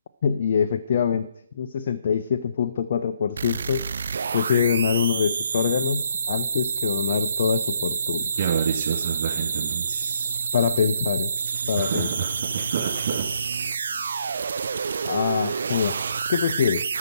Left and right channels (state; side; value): inverted; both; correlation -0.72